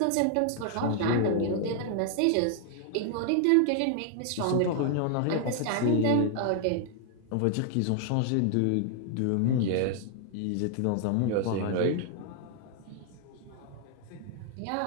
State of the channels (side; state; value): both; different; correlation 0.00